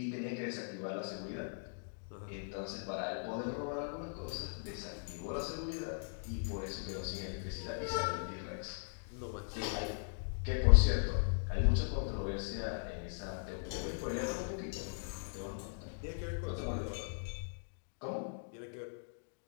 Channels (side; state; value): right; silent; digital silence